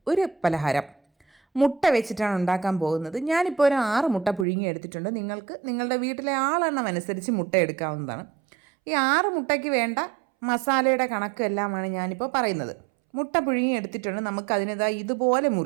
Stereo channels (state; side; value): drops out; left; at 4.5 s